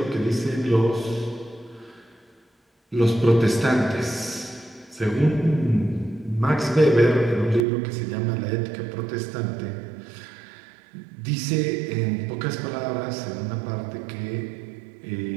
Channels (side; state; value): left; drops out; at 7.7 s